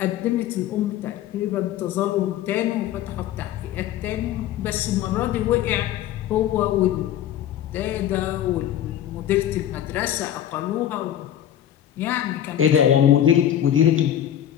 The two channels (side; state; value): right; quieter; 11.1 dB